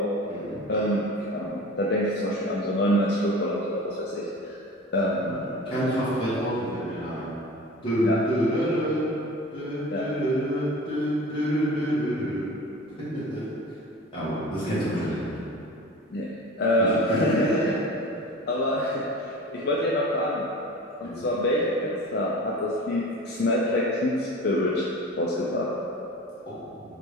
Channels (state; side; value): normal; both; correlation 0.37